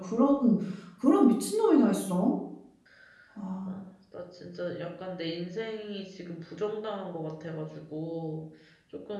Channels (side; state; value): both; identical; correlation 1.00